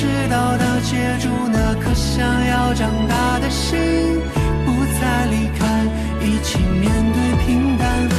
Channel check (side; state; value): both; identical; correlation 1.00